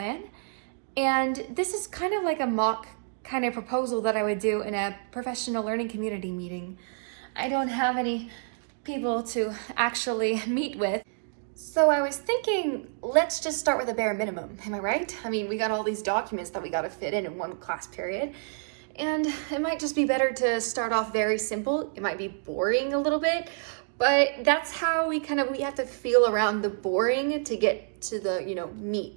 And this is kind of like a mock kind of proposal that I would do in a professional learning community meeting. I don't have any people to actually meet with. So I was thinking, let's just start with a bare minimum. Am I right? I mean, we got all these documents that we got to fit in one class period. And it might just be better to start off very simple. It might be boring a little bit, but that's how we have to feel around the boring to get to the,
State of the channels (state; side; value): silent; left; digital silence